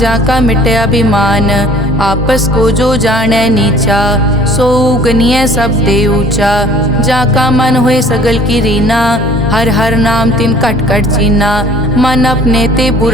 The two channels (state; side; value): normal; both; correlation 0.52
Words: मिटे अभिमान। आपस को जो जाने नीचा, सो गनिय सब ते ऊंचा। जाका मन होए सगल की रीना, हर हर नाम तिन कट कट चीना। मन अपने ते